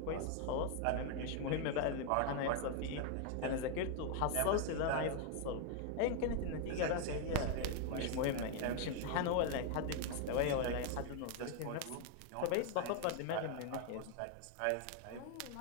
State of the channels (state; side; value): different; both; correlation 0.00